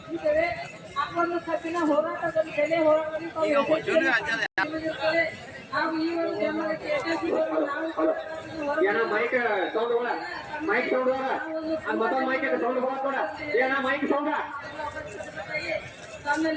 ಆ ಒಂದು ಕಬ್ಬಿನ ಹೋರಾಟದಲ್ಲಿ ಬೆಲೆ ಹೋರಾಟದಲ್ಲಿ ಹಾಗೂ ಈ ಒಂದು ಬೆಂಬಲಕ್ಕೆ mic sound mic sound mic sound ಏನ ಮೈಕ್ ಸೌಂಡ್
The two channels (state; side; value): identical; both; correlation 1.00